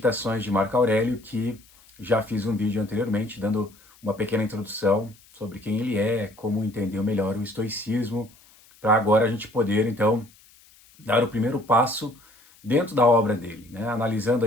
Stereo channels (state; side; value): noise; left; hiss, 27 dB below the sound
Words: de Marco Aurélio, que já fiz um vídeo anteriormente dando uma pequena introdução sobre quem ele é, como entender melhor o estoicismo, para agora a gente poder então dar o primeiro passo dentro da obra dele, né? Analisando